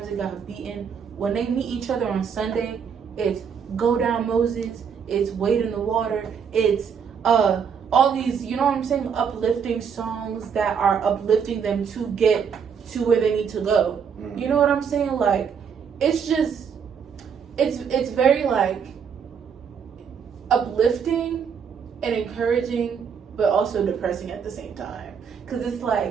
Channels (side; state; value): left; quieter; 6.9 dB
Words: they got beaten, when they meet each other on Sunday, it's Go Down Moses, it's Wade in the Water, it's all these, you know what I'm saying, uplifting songs that are uplifting them to get to where they need to go. You know what I'm saying? It's just, it's very uplifting and encouraging, but also depressing at the same time. Because it's